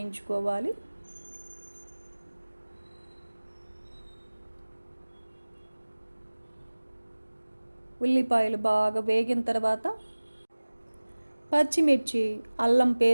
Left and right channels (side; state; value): both; inverted; correlation -1.00